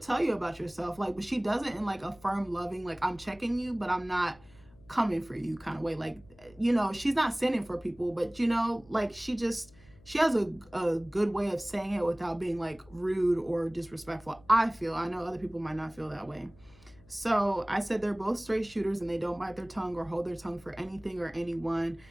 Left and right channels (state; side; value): noise; left; hum, 26 dB below the sound